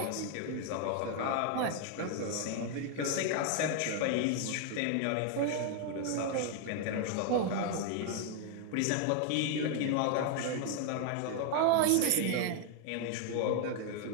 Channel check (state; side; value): different; both; correlation 0.01